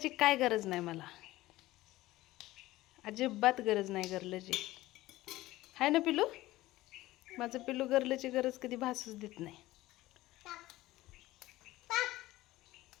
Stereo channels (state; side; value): quieter; right; 17.2 dB